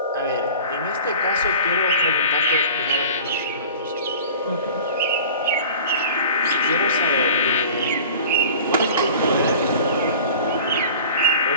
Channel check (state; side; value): inverted; both; correlation -0.42